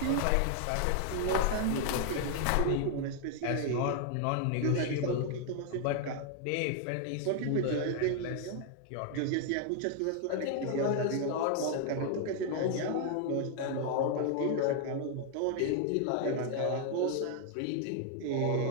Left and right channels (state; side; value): different; both; correlation 0.00